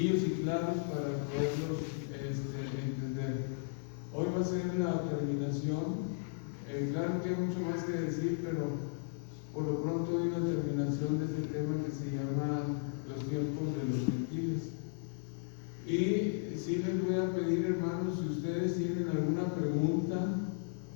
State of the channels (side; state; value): right; silent; 54 dB below the other